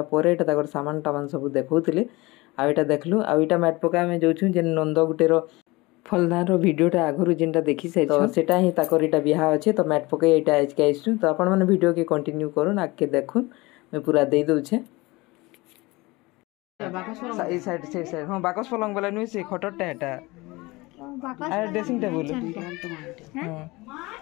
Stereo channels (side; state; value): right; quieter; 22.5 dB